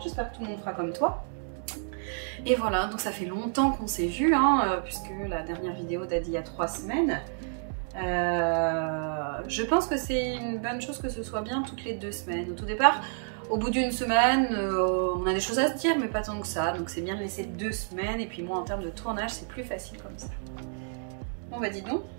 j'espère que tout le monde fera comme toi. Et voilà, donc ça fait longtemps qu'on s'est vu, puisque la dernière vidéo date d'il y a 3 semaines. Je pense que c'est une bonne chose que ce soit bien toutes les 2 semaines. Au tout départ, au bout d'une semaine, on a des choses à se dire, mais pas tant que ça. Donc c'est bien de laisser 2 semaines, et puis moi en termes de tournage, c'est plus facile comme ça. Bon bah dis donc,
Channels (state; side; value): silent; left; digital silence